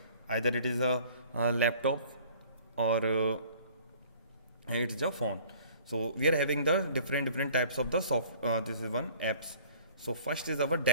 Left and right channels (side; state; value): both; inverted; correlation -0.52